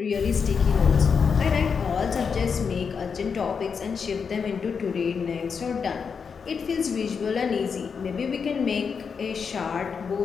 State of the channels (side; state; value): right; quieter; 6.0 dB